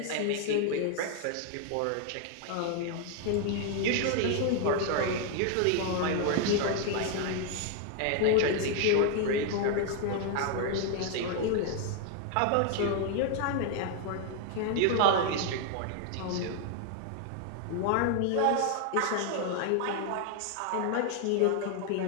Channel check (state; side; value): different; both; correlation 0.00